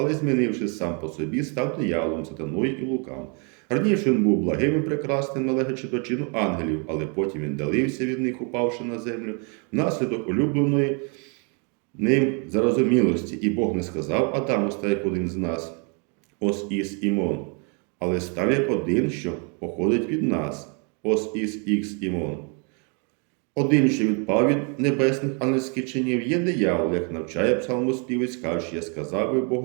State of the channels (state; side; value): quieter; left; 36.2 dB